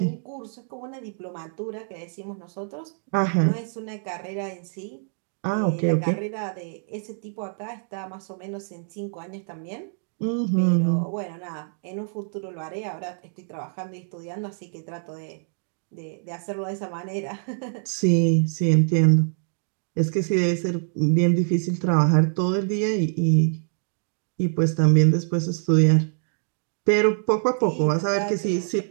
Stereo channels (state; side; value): silent; left; 62 dB below the other